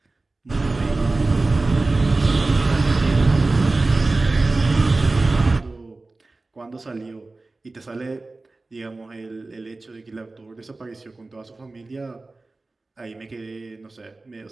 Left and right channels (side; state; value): left; quieter; 3.3 dB